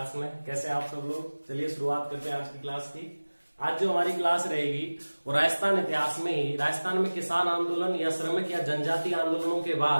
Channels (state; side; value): inverted; both; correlation -1.00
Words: में। कैसे आप सब लोग? चलिए शुरुआत करते हैं आज की क्लास की। आज जो हमारी क्लास रहेगी वो राजस्थान इतिहास में ही राजस्थान में किसान आंदोलन या श्रमिक या जनजातीय आंदोलनों के